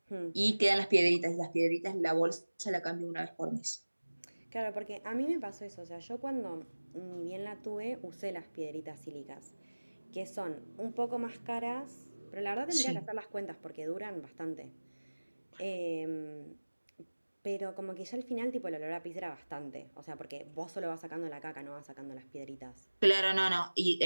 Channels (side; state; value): both; inverted; correlation -1.00